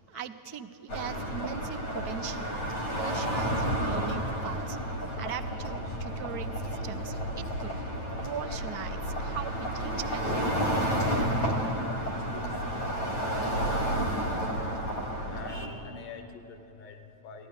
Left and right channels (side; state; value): right; late; 9.1 ms